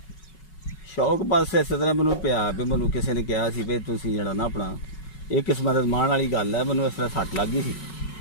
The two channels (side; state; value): right; late; 5.4 ms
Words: ਸ਼ੌਕ ਬਸ ਇਸ ਤਰ੍ਹਾਂ ਮੈਨੂੰ ਪਿਆ ਵੀ ਮੈਨੂੰ ਕਿਸੇ ਨੇ ਕਿਹਾ ਸੀ ਵੀ ਤੁਸੀਂ ਜਿਹੜਾ ਨਾ ਆਪਣਾ ਇਹ ਕਿਸਮਤ ਅਜ਼ਮਾਉਣ ਵਾਲੀ ਗੱਲ ਹੈ। ਮੈਨੂੰ ਇਸ ਤਰ੍ਹਾਂ ਸੱਟ ਲੱਗ ਗਈ ਸੀ।